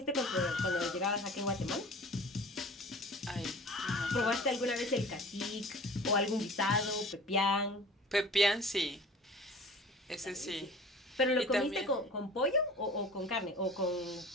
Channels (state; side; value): normal; both; correlation 0.42